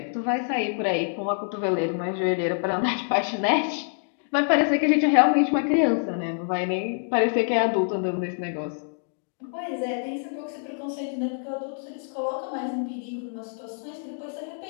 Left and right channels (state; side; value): silent; right; digital silence